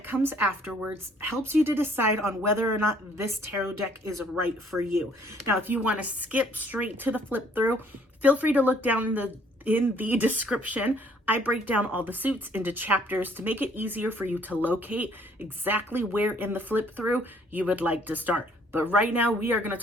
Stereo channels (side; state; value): both; normal; correlation 0.61